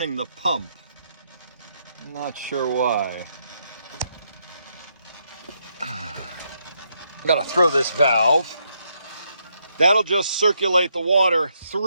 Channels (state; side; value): inverted; both; correlation -0.77